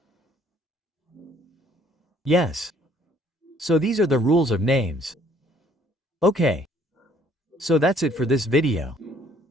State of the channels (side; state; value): both; normal; correlation 0.61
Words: Yes. So these are the rules of names. Okay. So that's it for this video.